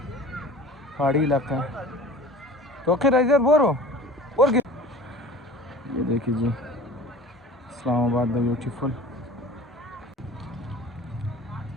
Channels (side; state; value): both; normal; correlation 0.42